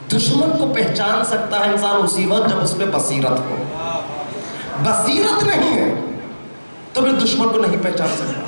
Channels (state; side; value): inverted; both; correlation -1.00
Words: دشمن کو پہچان سکتا ہے انسان اسی وقت جب اس پہ بصیرت ہو۔ بصیرت نہیں ہے تو پھر دشمن کو نہیں پہچان سکتا۔